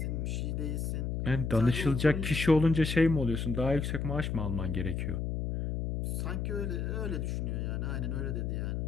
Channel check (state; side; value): noise; left; hum, 2 dB below the sound